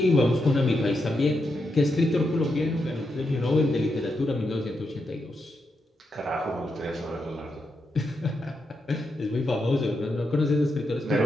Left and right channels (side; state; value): both; normal; correlation 0.84